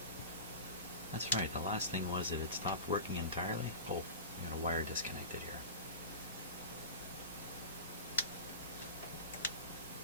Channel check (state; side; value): inverted; both; correlation -0.31